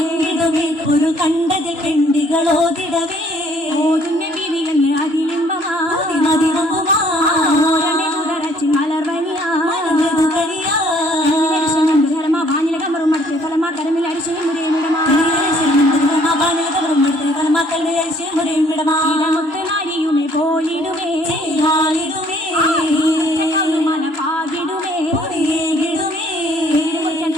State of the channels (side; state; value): left; late; 3.0 ms